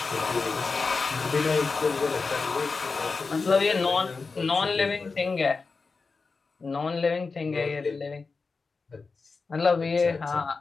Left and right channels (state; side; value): quieter; right; 4.4 dB